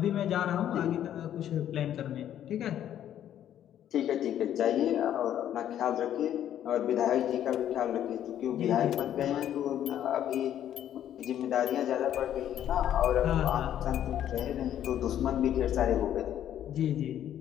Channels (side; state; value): right; quieter; 10.8 dB